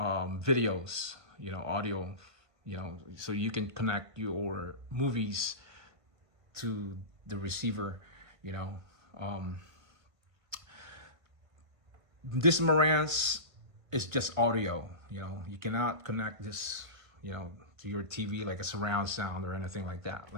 you know, audio, you know, so you can connect your movies to the receiver, you know. This Marantz is just audio, you know. You cannot connect this, you know, to your TV like a surround sound or anything like that,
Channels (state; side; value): late; left; 1.5 ms